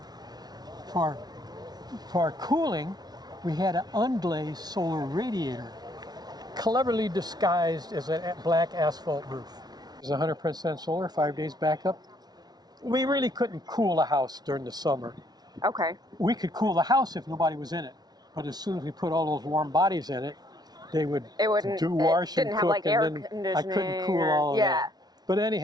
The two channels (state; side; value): late; left; 0.19 ms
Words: For cooling, we had an unglazed solar radiator, cleverly disguised as a black asphalt roof. It was 100% solar, 5 days backup. We really couldn't cool a house during the summer. Okay. We could cool the house if nobody was in it, but as soon as we put all those warm bodies in it, they would It wouldn't. do wash it didn't and have cook, like air and then conditioning. I couldn't cool or- all of yeah. that. But